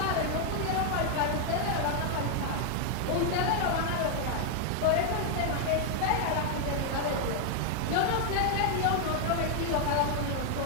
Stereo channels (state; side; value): different; both; correlation 0.00